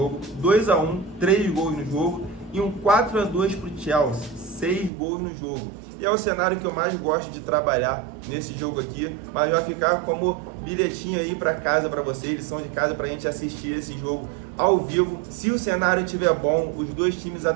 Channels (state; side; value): drops out; left; at 4.9 s